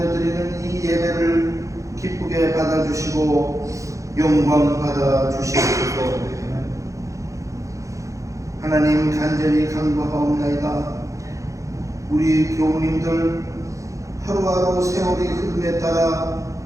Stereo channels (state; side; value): late; left; 0.15 ms